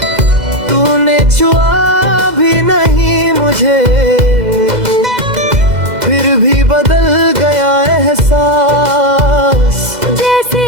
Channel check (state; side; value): late; left; 2.0 ms